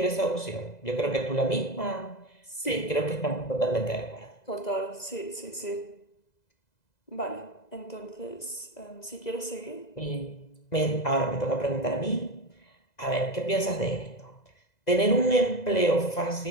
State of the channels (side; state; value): right; late; 2.0 ms